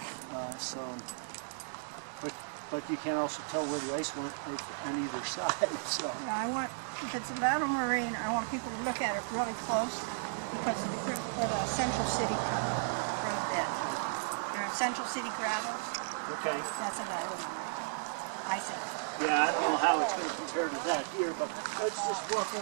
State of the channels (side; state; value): left; silent; 55 dB below the other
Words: But you can also tell where the ice went on either side. So. Yeah, if it's a lateral moraine, I want people to look at it really close because of the Central City road bed. There are Central City gravels. Okay. That's a lateral moraine. I said. Yeah, I don't know how it's going to compare to that here, but let's just walk